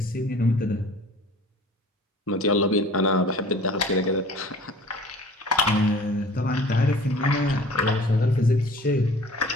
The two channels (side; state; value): both; normal; correlation 0.46